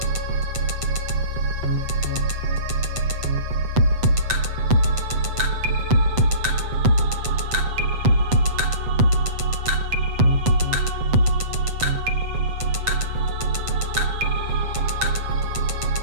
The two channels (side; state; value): left; late; 7.8 ms